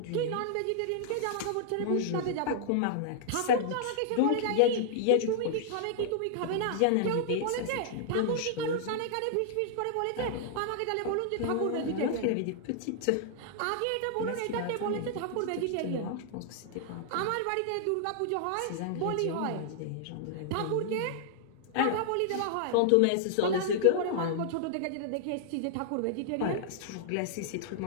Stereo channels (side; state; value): both; different; correlation -0.01